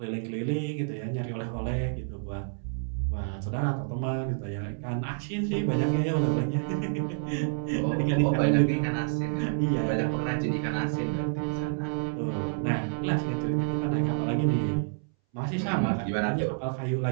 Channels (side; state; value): left; silent; 59 dB below the other